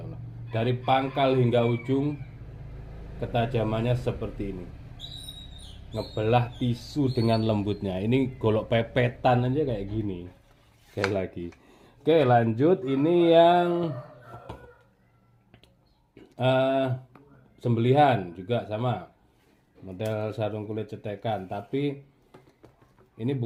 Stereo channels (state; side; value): identical; both; correlation 1.00